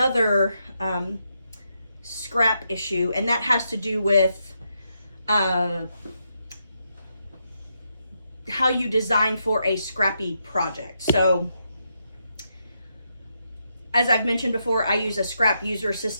scrap issue, and that has to do with how you design for a scrappy project. So as I've mentioned before, I use a scrap user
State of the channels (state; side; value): inverted; both; correlation -0.81